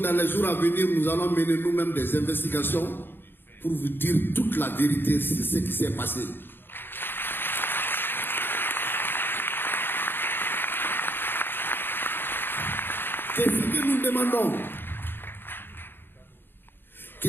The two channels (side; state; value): right; late; 0.099 ms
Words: les jours à venir, nous allons mener nous-mêmes des investigations pour vous dire toute la vérité sur ce qui s'est passé. Qu'est-ce que nous demandons?